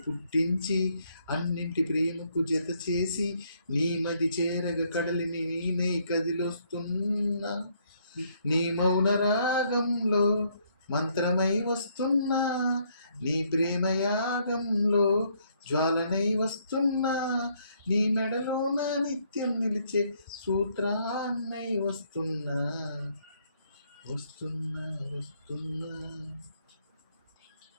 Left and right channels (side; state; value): both; inverted; correlation -0.69